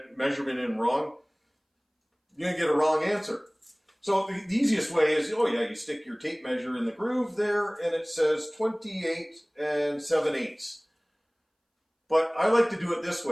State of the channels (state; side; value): identical; both; correlation 1.00